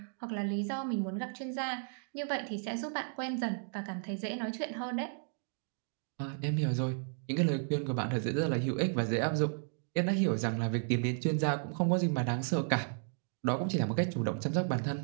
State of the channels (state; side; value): silent; left; 55 dB below the other